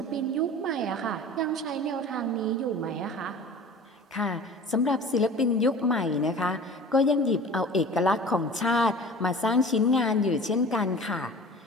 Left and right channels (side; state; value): both; normal; correlation 0.41